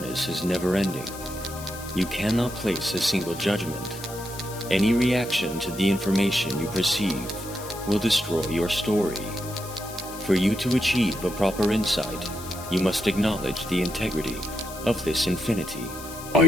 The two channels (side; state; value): left; noise; hiss, 14 dB below the sound